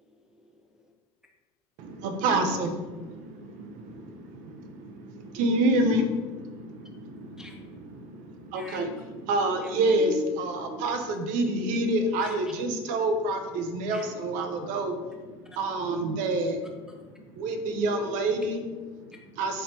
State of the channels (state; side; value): normal; both; correlation 0.28